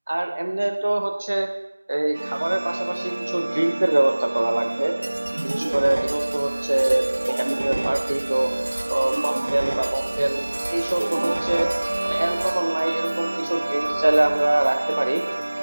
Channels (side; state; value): both; inverted; correlation -1.00